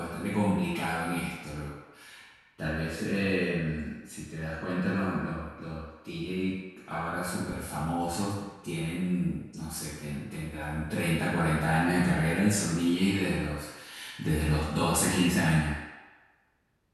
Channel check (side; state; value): both; identical; correlation 1.00